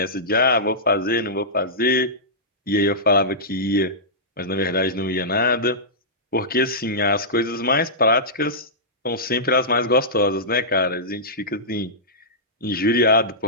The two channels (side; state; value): both; normal; correlation -0.15